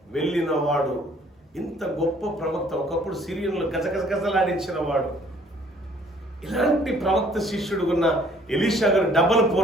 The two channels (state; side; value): normal; both; correlation 0.59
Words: వెళ్ళిన వాడు. ఇంత గొప్ప ప్రవక్త, ఒకప్పుడు సిరియన్లు గజగజగజలాడించిన వాడు. ఇలాంటి ప్రవక్త శిష్యుడు ఉన్న ఎలీషా గారు డబల్